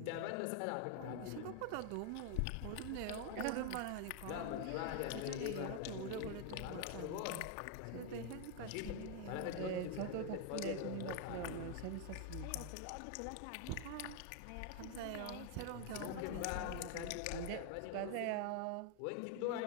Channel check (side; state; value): both; different; correlation 0.00